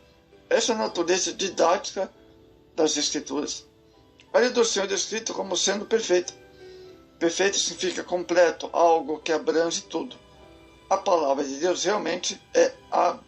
Essa é a natureza didática das Escrituras. A lei do Senhor é descrita como sendo perfeita. Perfeito significa completo, algo que abrange tudo. A palavra de Deus realmente é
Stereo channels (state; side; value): identical; both; correlation 1.00